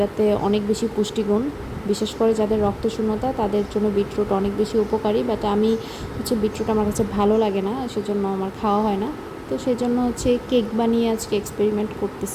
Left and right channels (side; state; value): both; identical; correlation 1.00